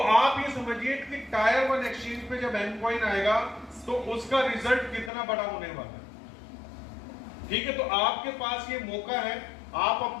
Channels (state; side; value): drops out; right; at 5.1 s